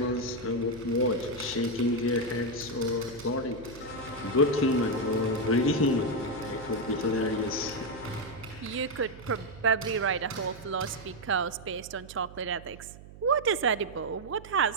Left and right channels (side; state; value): right; noise; hum, 17 dB below the sound